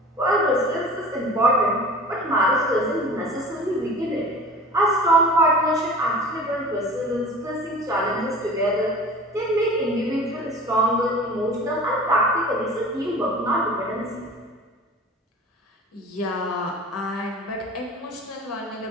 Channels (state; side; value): normal; both; correlation 0.40